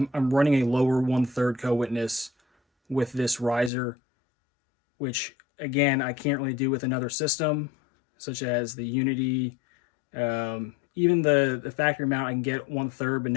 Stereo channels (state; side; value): drops out; right; at 3.7 s